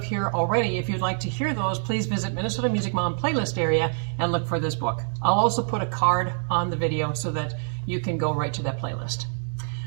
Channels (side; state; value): left; silent; 61 dB below the other